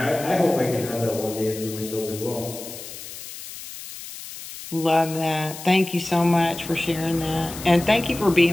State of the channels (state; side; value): noise; left; hiss, 12 dB below the sound